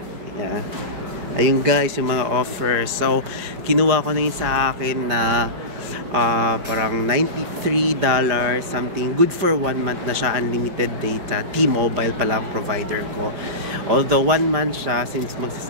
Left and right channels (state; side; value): late; left; 5.0 ms